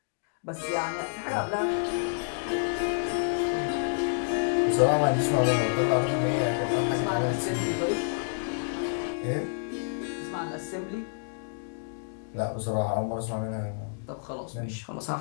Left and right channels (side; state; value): right; silent; digital silence